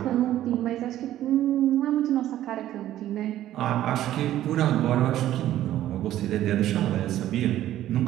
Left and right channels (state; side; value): quieter; left; 13.0 dB